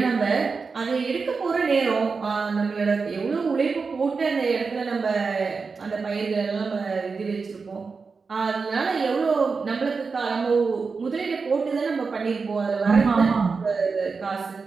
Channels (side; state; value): left; quieter; 4.8 dB